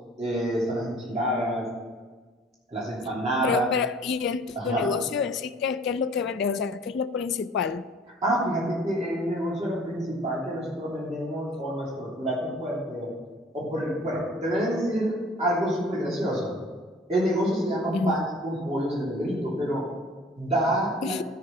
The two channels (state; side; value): normal; both; correlation 0.50